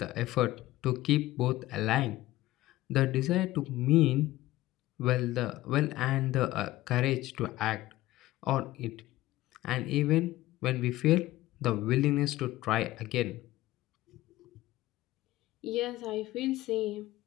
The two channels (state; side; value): quieter; right; 16.7 dB